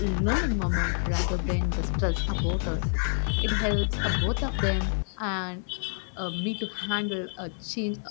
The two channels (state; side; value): silent; right; 56 dB below the other